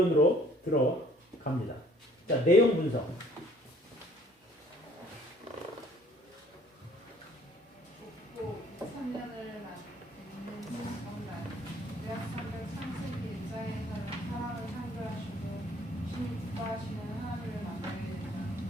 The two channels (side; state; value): both; normal; correlation 0.58